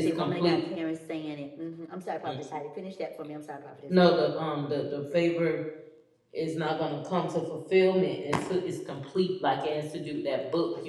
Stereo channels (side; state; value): both; identical; correlation 1.00